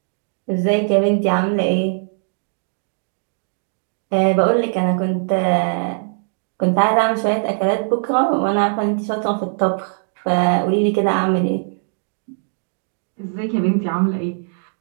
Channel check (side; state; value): left; silent; digital silence